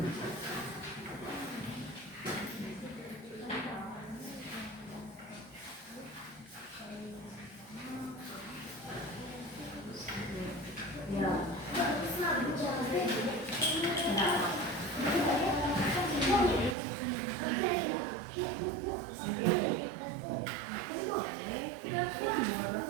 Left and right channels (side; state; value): left; drops out; at 16.8 s